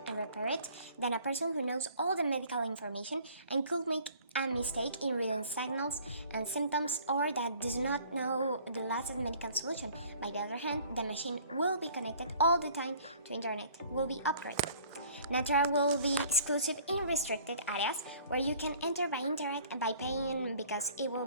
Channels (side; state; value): both; inverted; correlation -0.52